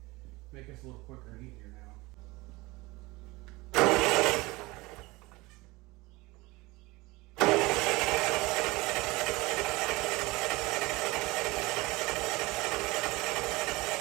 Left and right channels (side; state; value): left; quieter; 22.2 dB